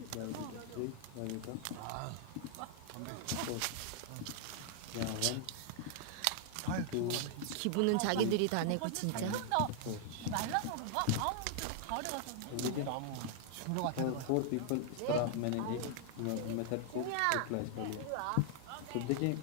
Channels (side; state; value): both; different; correlation 0.00